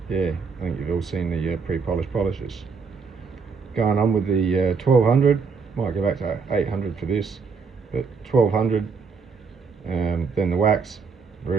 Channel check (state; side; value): quieter; left; 5.3 dB